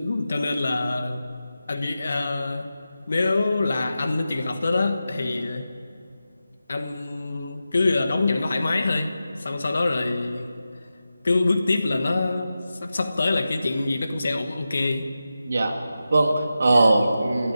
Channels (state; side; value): inverted; both; correlation -0.92